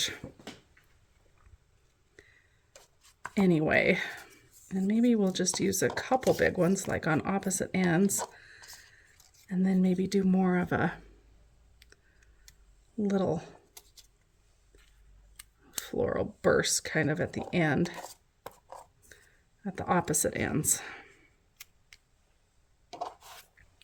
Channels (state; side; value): identical; both; correlation 1.00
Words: Anyway, and maybe we'll just use a couple big ones like on opposite ends, and then maybe do more of a little floral burst kind of at the end, at the opposite ends,